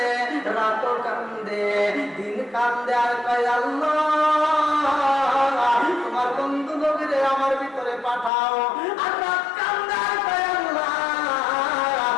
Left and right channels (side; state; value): right; drops out; at 8.3 s